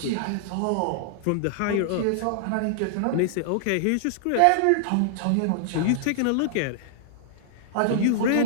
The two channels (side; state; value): both; different; correlation -0.01